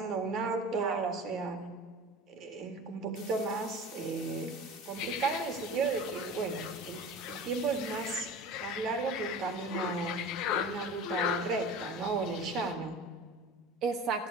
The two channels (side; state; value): both; normal; correlation 0.36